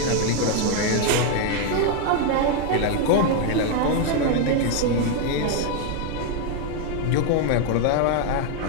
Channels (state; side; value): different; both; correlation 0.00